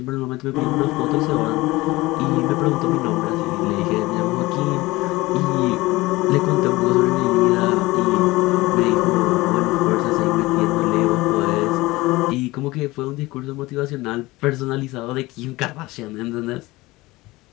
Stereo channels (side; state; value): right; quieter; 20.3 dB